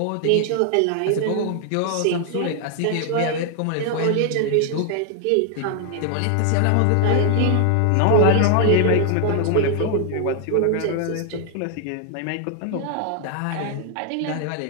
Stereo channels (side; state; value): both; different; correlation 0.00